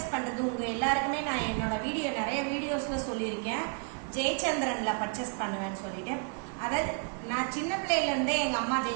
பண்றது உங்க எல்லாருக்குமே நான் என்னோட நிறைய வீடியோஸ்ல சொல்லியிருக்கேன். ஜெயச்சந்திரன்ல பர்ச்சேஸ் பண்ணுவேன்னு சொல்லிட்டு, அதாவது நான் சின்ன பிள்ளையில இருந்தே எங்க அம்மா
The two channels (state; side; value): quieter; left; 36.5 dB